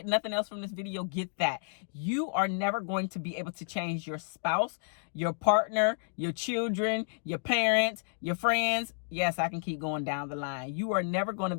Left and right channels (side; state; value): right; silent; digital silence